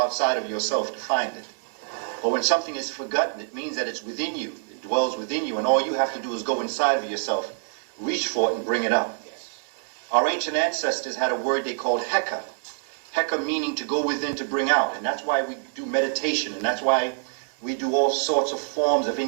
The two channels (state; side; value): silent; left; 61 dB below the other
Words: of yourself to find it. But when something is forgotten, it means that it's within you. It dwells within you, and all you have to do is go inside of yourself, reach for it, and bring it up. Our ancient ancestors had a word they called heka. Heka meaning to go within, to bring out. And that's why we do meditation, and that's why we do all sorts of forms of